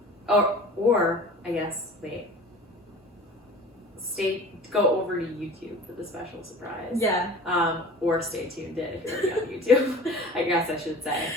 Or I guess go over to YouTube for the special surprise. Yeah. Or stay tuned in if you're already on YouTube. I guess I should say.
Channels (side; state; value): both; normal; correlation 0.41